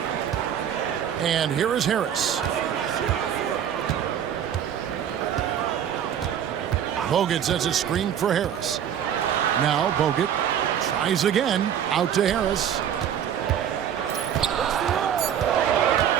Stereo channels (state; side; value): quieter; left; 9.3 dB